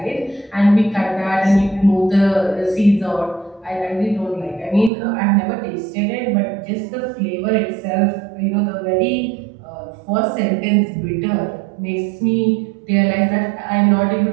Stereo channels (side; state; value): left; drops out; at 4.9 s